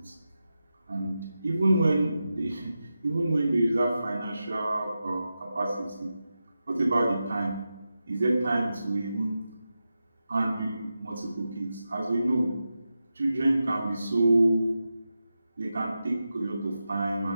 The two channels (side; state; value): both; inverted; correlation -0.91